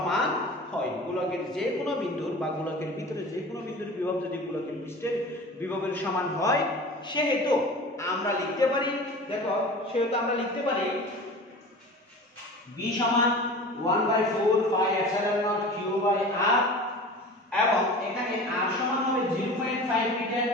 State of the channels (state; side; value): normal; both; correlation 0.37